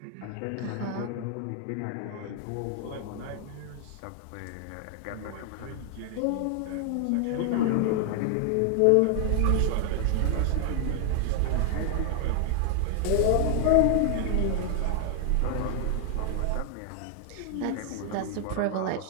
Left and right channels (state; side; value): different; both; correlation 0.00